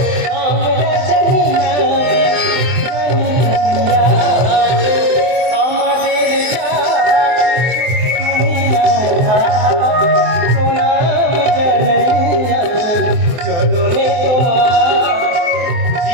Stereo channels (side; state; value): left; late; 24 ms